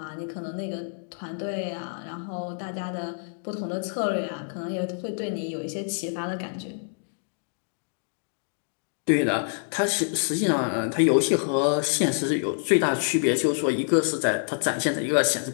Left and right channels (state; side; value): silent; right; digital silence